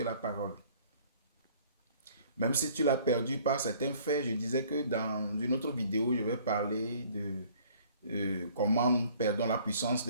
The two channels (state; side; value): inverted; both; correlation -0.56